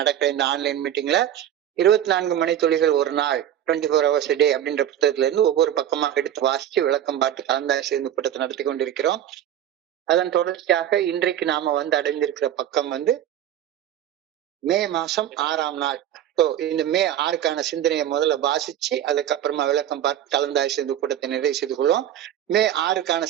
இந்த ஆன்லைன் மீட்டிங்ல 24 மணி துளிகள் ஒரு நாள் 24 hours a day அப்படின்ற புத்தகத்துல இருந்து ஒவ்வொரு பக்கமாக எடுத்து வாசிச்சு விளக்கம் பார்த்து கலந்தாய்வு செய்து கூட்டத்தை நடத்தி கொண்டிருக்கிறோம். அதன் தொடர்ச்சியாக இன்றைக்கு நாம அடைந்திருக்கிற பக்கம் மே மாசம் 6ஆம் நாள். இந்த மே 6க்கான சிந்தனையை முதல்ல வாசிச்சு அதுக்கப்புறமா விளக்கம் பார்த்து கலந்தாய்வு செய்து கூட்டத்தை நிறைவு செய்து கொள்வோம். மே 6க்கான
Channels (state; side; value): quieter; left; 11.1 dB